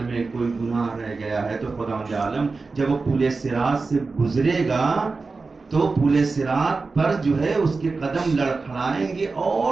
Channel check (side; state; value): left; quieter; 4.1 dB